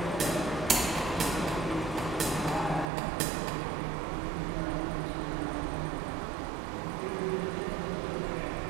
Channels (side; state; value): left; drops out; at 2.9 s